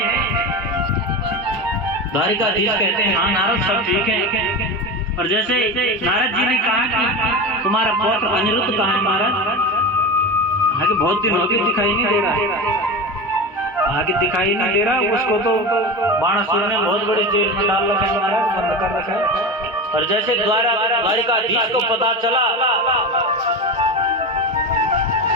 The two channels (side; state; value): both; normal; correlation 0.24